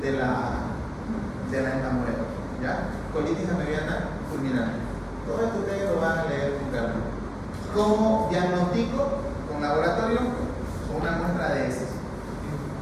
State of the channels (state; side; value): identical; both; correlation 1.00